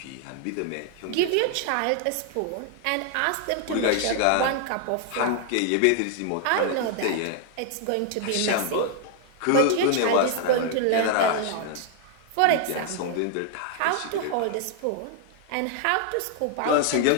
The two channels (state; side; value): different; both; correlation 0.00